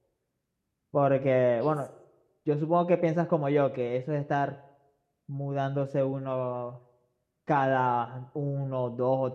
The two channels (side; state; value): both; identical; correlation 1.00